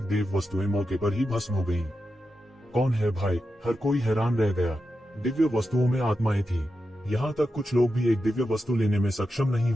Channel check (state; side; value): normal; both; correlation 0.89